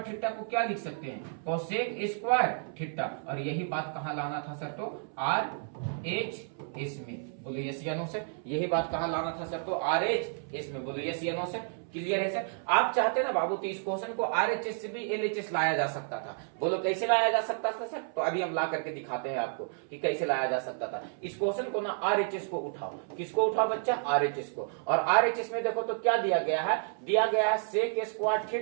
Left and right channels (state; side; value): silent; left; 57 dB below the other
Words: थीटा को क्या लिख सकते हैं? Cosec square theta. और यही बात कहां लाना था सर? तो RHS में। बोलो यस या नो सर? यही बात कहां लाना था सर? तो RHS में। बोलो यस या नो सर? क्लियर है सर? आप चाहते ना बाबू तो इस क्वेश्चन को RHS से भी LHS लाया जा सकता था। बोलो कैसे लाया जा सकता था सर? तो अभी हम ला करके दिखाते हैं आपको कि कैसे लाया जा सकता था। इस क्वेश्चन को ना RHS को उठाओ। किसको उठाओ बच्चा? RHS को। और RHS में देखो तो क्या दिया गया है? दिया गया है सेक स्क्वायर